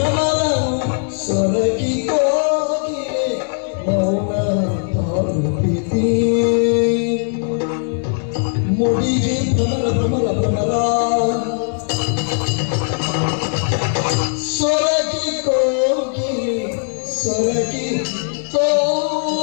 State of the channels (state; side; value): silent; right; digital silence